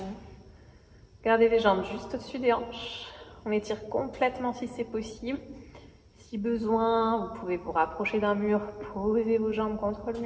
Gardez les jambes juste au-dessus des hanches. On étire complètement si c'est possible. Si besoin, vous pouvez vous rapprocher d'un mur, poser vos jambes contre le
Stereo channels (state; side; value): identical; both; correlation 1.00